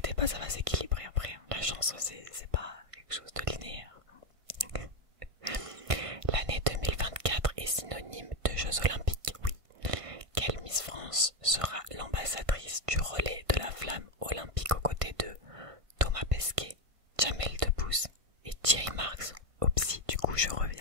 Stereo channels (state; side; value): late; left; 1.5 ms